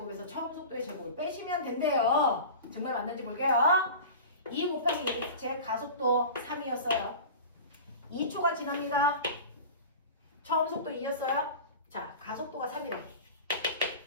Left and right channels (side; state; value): both; inverted; correlation -0.33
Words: 처음 속도의 제곱을 빼시면 된대요. 정말 맞는지 볼게요. 2 곱하기 제 가속도 3이었어요. 2초가 지납니다. 처음 속도 2였어요. 자, 가속도가 3이래.